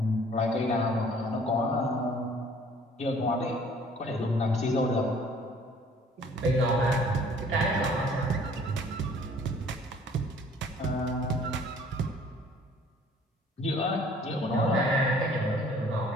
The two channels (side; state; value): both; normal; correlation 0.55